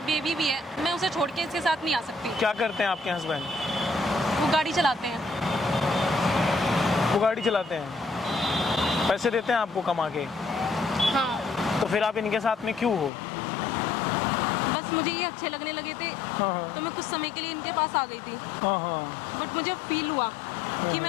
बेबी भी है, मैं उसे छोड़ के इसके साथ नहीं आ सकती। क्या करते हैं आपके हस्बैंड? वो गाड़ी चलाते हैं। वो गाड़ी चलाते हैं, पैसे देते हैं आपको कमा के? हाँ। तो फिर आप इनके साथ में क्यों हो? बस मुझे ये अच्छे लगने लगे थे, हाँ तो मैं कुछ समय के लिए इनके पास आ गई थी। हाँ हाँ। बट मुझे फील हुआ कि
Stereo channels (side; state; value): right; drops out; at 13.1 s